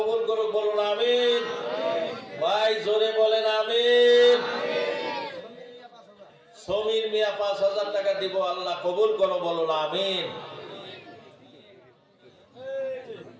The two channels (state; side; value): identical; both; correlation 1.00